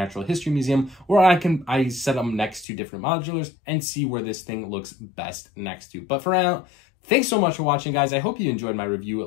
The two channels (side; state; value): right; drops out; at 2.7 s